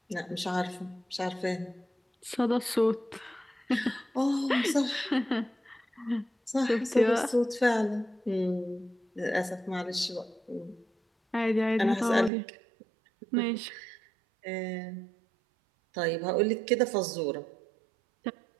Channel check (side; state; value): left; drops out; at 12.3 s